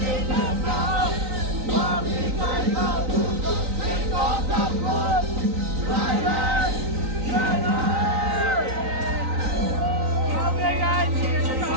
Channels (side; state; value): left; late; 3.9 ms